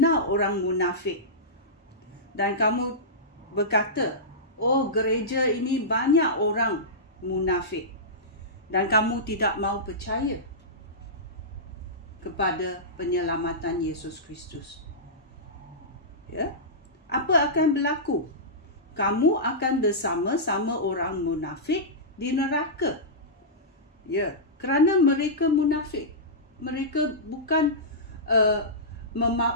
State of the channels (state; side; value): normal; both; correlation -0.16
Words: orang munafik dan kamu berkata, oh, gereja ini banyak orang munafik, dan kamu tidak mau percaya kepada penyelamatan Yesus Kristus, apa akan berlaku? Kamu akan bersama-sama orang munafik di neraka. Kerana mereka munafik. Mereka bukan